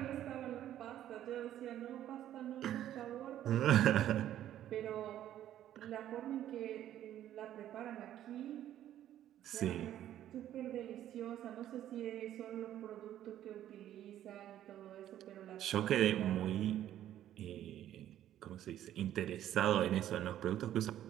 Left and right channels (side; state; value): left; quieter; 11.9 dB